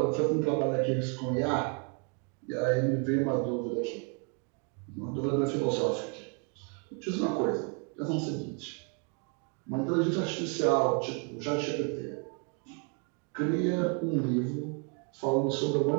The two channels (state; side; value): quieter; left; 37.6 dB